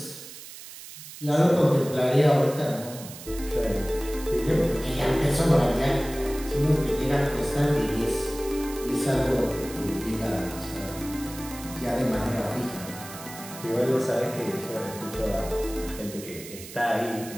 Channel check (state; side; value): noise; right; hiss, 14 dB below the sound